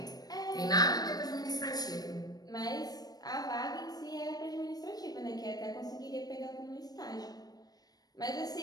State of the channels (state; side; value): late; right; 0.19 ms